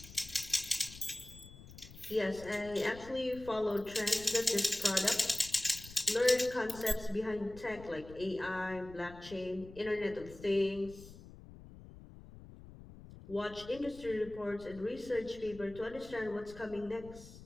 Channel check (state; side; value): noise; left; rumble, 17 dB below the sound